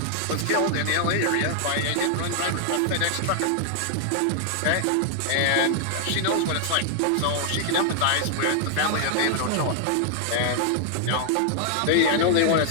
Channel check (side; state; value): both; different; correlation -0.01